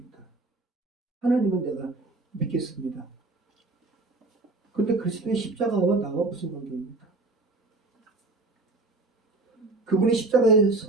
하나님은 내가 믿겠습니다. 그런데 그리스도의 십자가와 나와 무슨 관계입니까? 그분이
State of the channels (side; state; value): left; quieter; 3.2 dB